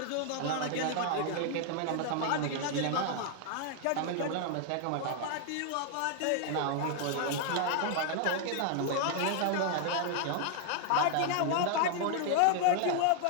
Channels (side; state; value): both; different; correlation 0.00